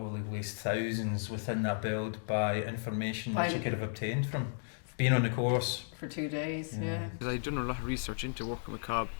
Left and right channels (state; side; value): silent; right; digital silence